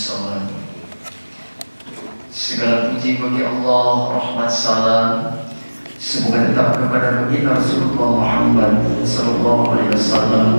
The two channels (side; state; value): both; inverted; correlation -1.00